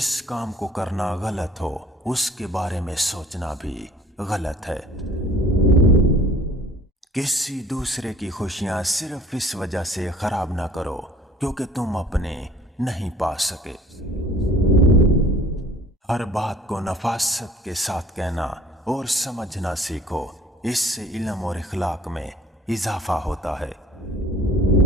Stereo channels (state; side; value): normal; both; correlation 0.51